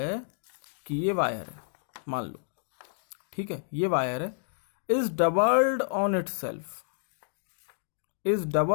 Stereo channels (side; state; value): right; silent; digital silence